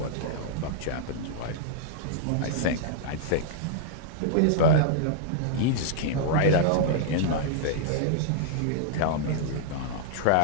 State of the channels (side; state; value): both; different; correlation -0.01